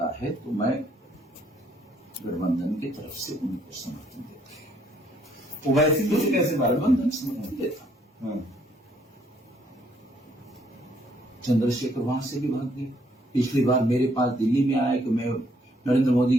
है तो मैं गठबंधन की तरफ से उनको समर्थन देता हूं। ओवैसी को कैसे गठबंधन समर्थन देता हूं। चंद्रशेखर वहां से भी भाग गए। पिछली बार मेरे पास दिल्ली में आया कि मैं नरेंद्र मोदी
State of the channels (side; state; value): both; normal; correlation 0.67